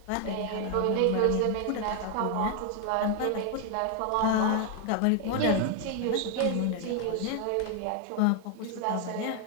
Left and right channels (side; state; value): both; different; correlation 0.01